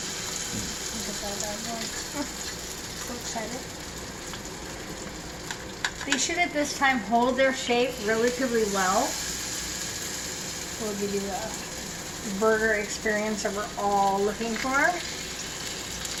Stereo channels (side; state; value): both; identical; correlation 1.00